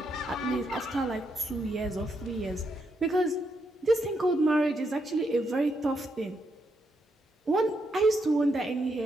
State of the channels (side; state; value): both; normal; correlation 0.79